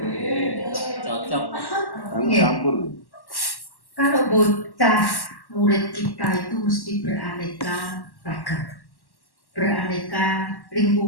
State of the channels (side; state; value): right; late; 1.1 ms